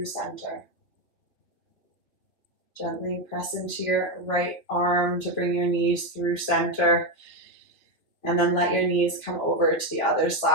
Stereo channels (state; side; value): late; right; 2.9 ms